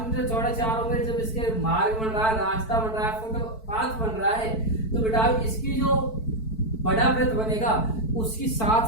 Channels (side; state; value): right; late; 4.5 ms